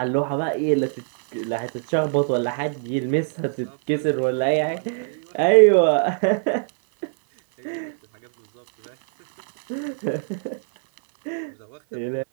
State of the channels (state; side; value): silent; left; 60 dB below the other